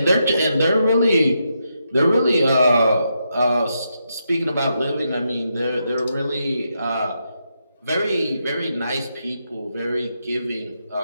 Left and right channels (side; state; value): both; inverted; correlation -0.83